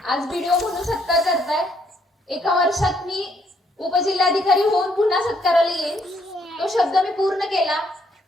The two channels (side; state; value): both; normal; correlation 0.70